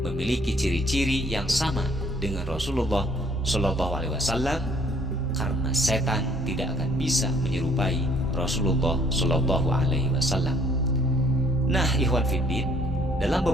memiliki ciri-ciri yang sama dengan Rasulullah Shallallahu Alaihi Wasallam, karena setan tidak akan bisa menyerupai Rasulullah Shallallahu Alaihi Wasallam. Nah, Ikhwan Fiddin, dalam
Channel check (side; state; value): both; normal; correlation 0.61